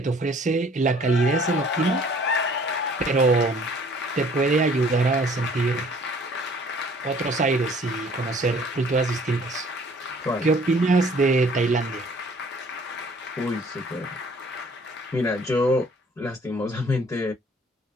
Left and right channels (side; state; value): both; normal; correlation 0.56